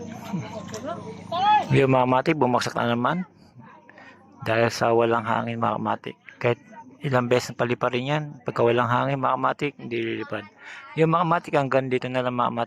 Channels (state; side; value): identical; both; correlation 1.00